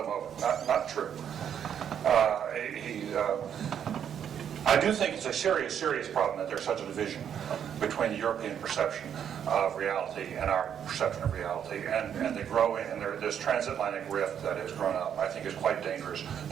him over. Not true. I do think it's a serious problem that there's such a division between the European perception of reality and our perception of reality, and the growing, and this transatlantic rift that has grown up, I think is quite dangerous,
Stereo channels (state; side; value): quieter; left; 8.7 dB